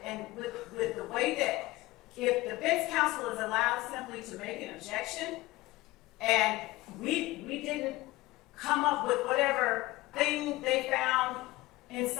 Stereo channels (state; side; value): quieter; right; 19.5 dB